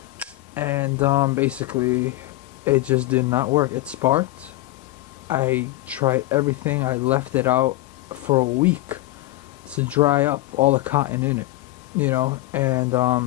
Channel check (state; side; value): quieter; right; 17.6 dB